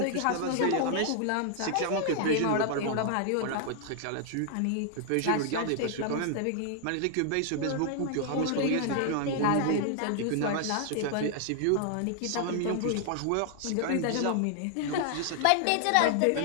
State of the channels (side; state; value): both; different; correlation 0.00